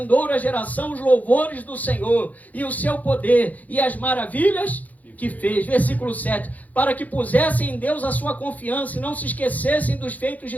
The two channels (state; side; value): late; right; 0.078 ms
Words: geração os louvores do Senhor e o seu poder e as maravilhas que fez. Versículo 7, para que pusessem em Deus a sua confiança e não se esquecessem dos feitos de